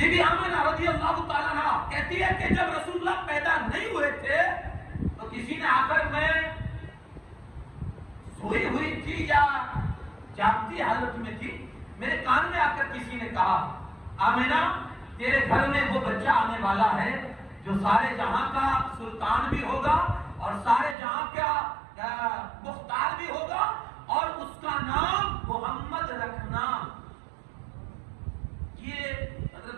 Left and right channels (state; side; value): drops out; left; at 21.0 s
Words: بی آمینہ رضی اللہ تعالیٰ عنہا کہتی ہے کہ جب رسول اللہ پیدا نہیں ہوئے تھے تو کسی نے آ کر، میں سوئی ہوئی تھی یا جاگتی حالت میں تھی، میرے کان میں آ کر کسی نے کہا آمینہ تیرے گھر میں وہ بچہ آنے والا ہے جو سارے جہاں کا سلطان بھی ہوگا اور سارے جہاں کا مختار بھی ہوگا، اور اس کا نام محمد رکھنا. یہ